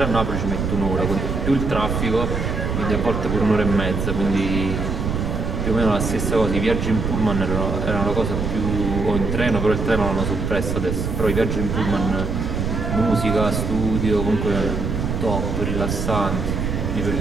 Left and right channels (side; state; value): right; noise; rumble, 2 dB below the sound